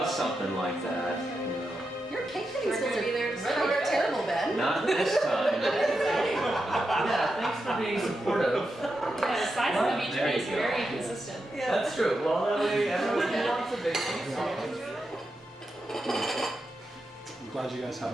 something like that, you know. your cake cutting skills are really terrible, Ben. Not this time. Yeah, thanks for being supportive. Yeah, the size of the beach There you is go. very consistent. That's true. Well, that way everyone wants a big piece. I'm glad you guys had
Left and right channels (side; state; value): both; normal; correlation 0.87